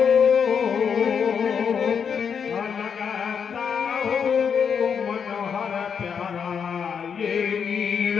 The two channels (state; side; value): quieter; right; 6.9 dB